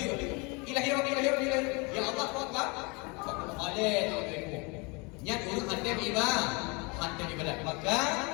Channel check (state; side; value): quieter; right; 29.6 dB